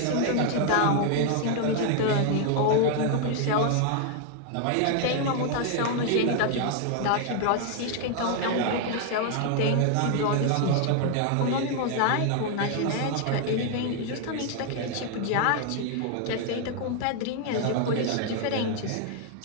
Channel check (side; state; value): both; different; correlation 0.00